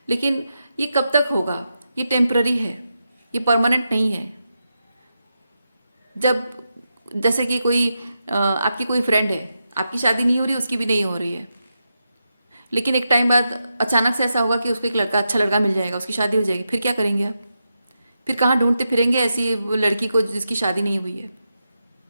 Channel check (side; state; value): both; inverted; correlation -0.87